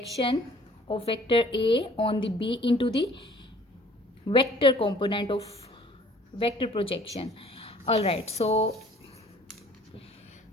of vector A on the B into the vector component of vector projection. Alright, so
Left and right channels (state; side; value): normal; both; correlation 0.54